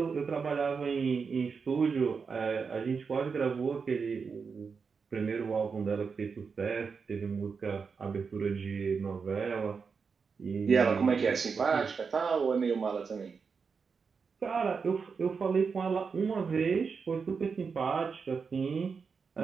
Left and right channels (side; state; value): left; quieter; 5.5 dB